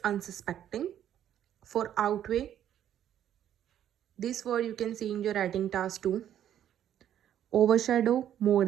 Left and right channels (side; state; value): left; quieter; 10.6 dB